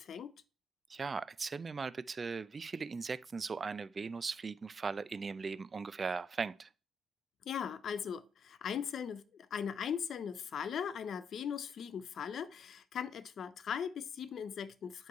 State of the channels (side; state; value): both; normal; correlation 0.77